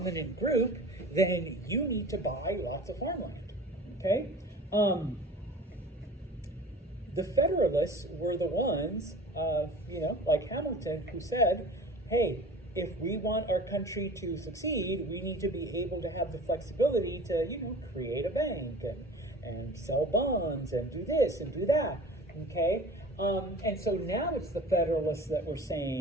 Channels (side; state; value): both; normal; correlation 0.41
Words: group, then you need to buy lots of farmland, okay? The Federalists were the ones, like Hamilton, who said, hey, if we want our country to succeed, we need to be able to have the flexibility to, create a bank and sell bonds and do this and do that, okay? And so now it's the Federalists that were